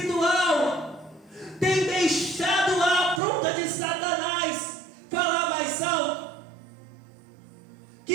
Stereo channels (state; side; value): drops out; left; at 3.2 s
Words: têm deixado a afronta de Satanás falar mais alto,